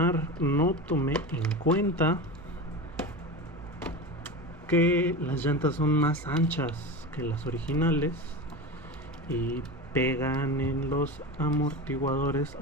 no tomé en cuenta que las llantas son más anchas que las originales y pegan en los amortiguadores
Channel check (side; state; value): both; normal; correlation 0.26